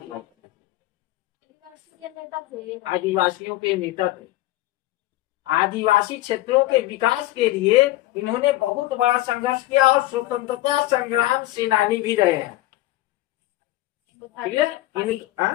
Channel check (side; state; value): right; quieter; 16.8 dB